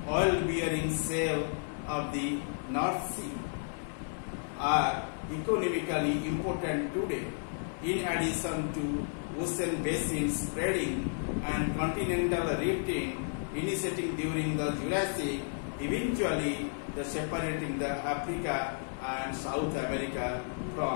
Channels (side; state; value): right; silent; 56 dB below the other